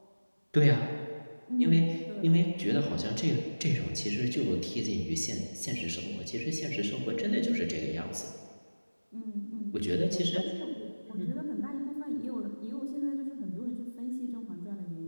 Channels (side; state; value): both; inverted; correlation -1.00